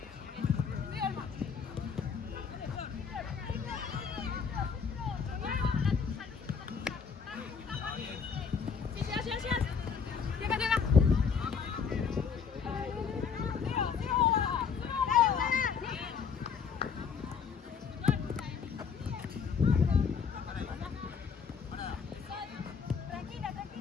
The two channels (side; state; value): right; quieter; 6.2 dB